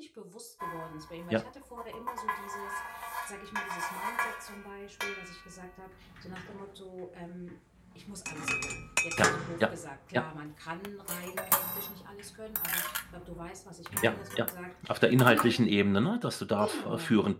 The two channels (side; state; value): both; identical; correlation 1.00